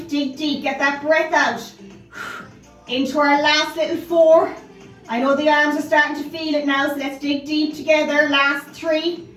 Dig deep, get that breath out. Into our last little 4. I know the arms are starting to feel it now, so let's dig deep together. Last 3.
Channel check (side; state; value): both; identical; correlation 1.00